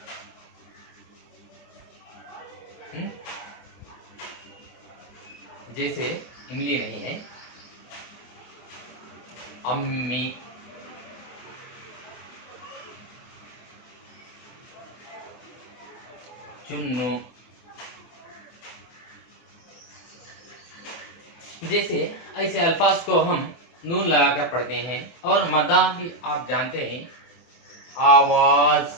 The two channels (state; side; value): late; right; 24 ms